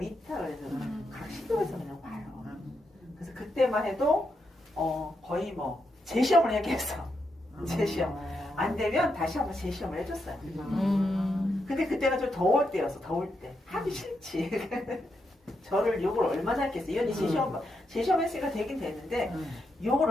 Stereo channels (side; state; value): both; normal; correlation 0.83